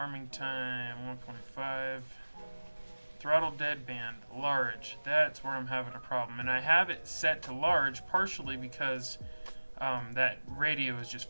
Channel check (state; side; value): inverted; both; correlation -1.00